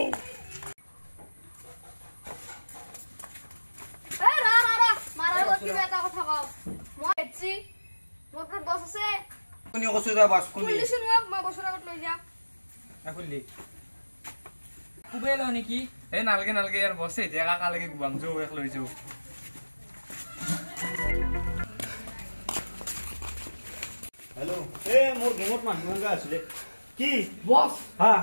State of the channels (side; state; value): both; inverted; correlation -1.00